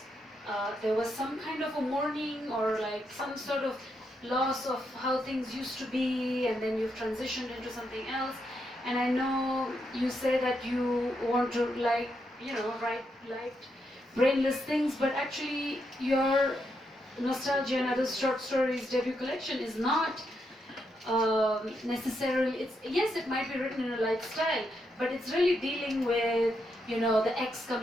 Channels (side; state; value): both; normal; correlation 0.81